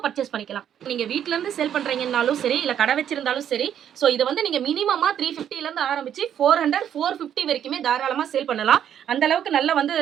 பர்ச்சேஸ் பண்ணிக்கலாம். நீங்கள் வீட்டிலேருந்து சேல் பண்ணுறீங்கன்னாலும் சரி, இல்லை கடை வச்சிருந்தாலும் சரி. ஸோ இதை வந்து நீங்கள் மினிமமாக 350லேருந்து ஆரம்பிச்சு 400 450 வரைக்குமே தாராளமாக சேல் பண்ணலாம். அந்த அளவுக்கு நல்ல வந்து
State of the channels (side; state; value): left; quieter; 9.7 dB